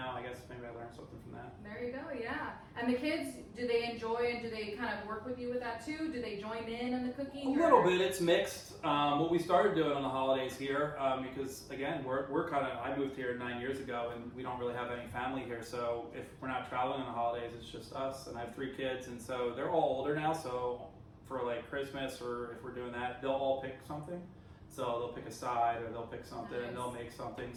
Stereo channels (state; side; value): identical; both; correlation 1.00